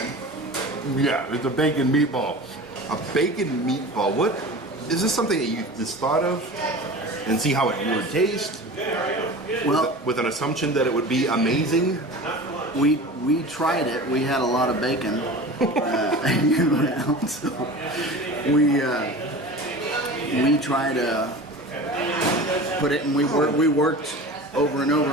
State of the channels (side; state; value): both; normal; correlation 0.35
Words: Yeah, it's a bacon meatball. A bacon meatball. What? Is this something that you just thought of and see how it would taste? Well, With an assumption that it would be amazing? we tried it. We had a lot of bacon around, so we tried to put it, and we worked over and over